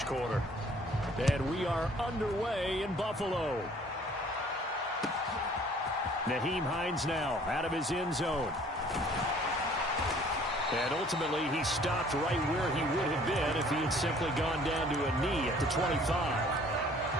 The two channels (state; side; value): normal; both; correlation 0.55